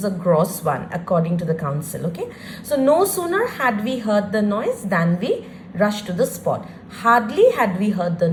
a gross one according to the council, okay? So, no sooner had we heard the noise than we rushed to the spot. Hardly had we heard the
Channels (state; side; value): identical; both; correlation 1.00